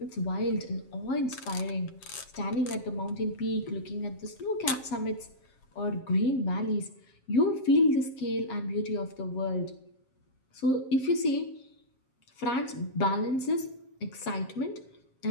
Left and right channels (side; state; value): right; late; 7.4 ms